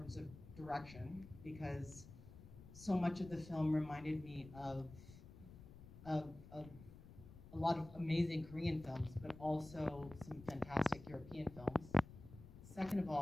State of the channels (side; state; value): left; noise; rumble, 16 dB below the sound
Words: of direction, because so much of the film reminded me of a lot of amazing Korean films, but also some fantastic European films. Second of